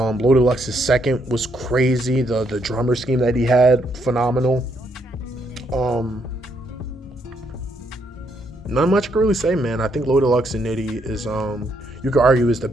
Lux's second was crazy. The drummer scheme that he had, phenomenal. not much I can really say, man. I think Low Deluxe and Nitty is you could argue is the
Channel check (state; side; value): normal; both; correlation 0.74